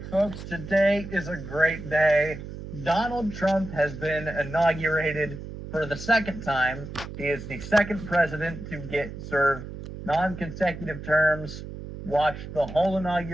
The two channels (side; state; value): right; noise; hum, 10 dB below the sound